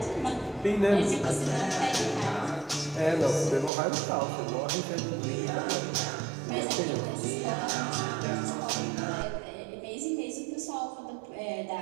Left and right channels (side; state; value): left; drops out; at 3.7 s